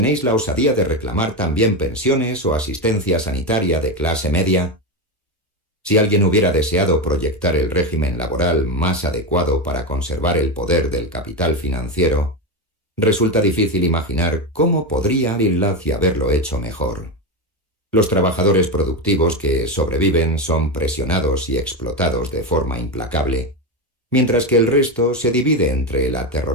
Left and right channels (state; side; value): normal; both; correlation 0.14